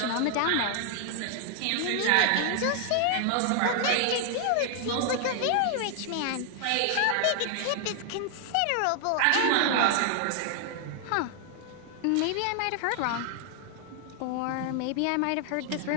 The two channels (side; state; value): both; different; correlation 0.00